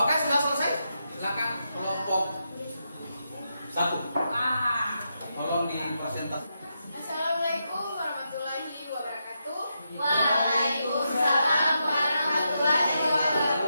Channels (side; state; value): both; inverted; correlation -0.84